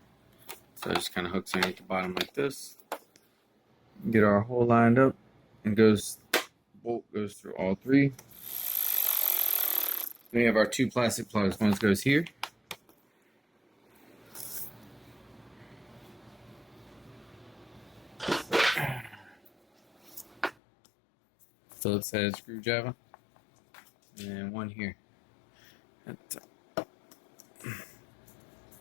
So it just kind of hooks underneath the bottom like this. Get our hole lined up, and bolt goes through all three. Then we have our two plastic plugs. One goes here. Phillips head screwdriver. And one here.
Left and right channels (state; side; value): drops out; right; at 20.6 s